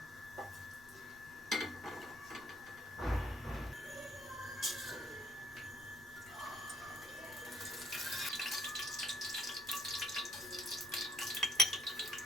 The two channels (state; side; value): noise; left; rumble, 21 dB below the sound